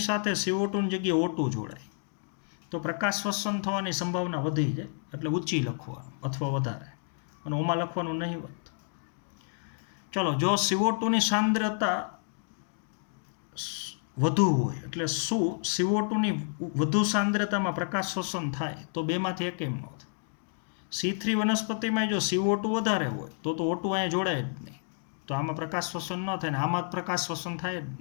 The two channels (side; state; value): right; silent; 58 dB below the other